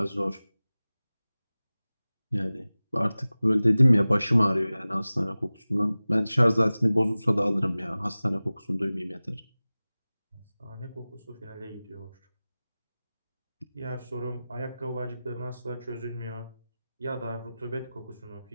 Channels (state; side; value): inverted; both; correlation -0.98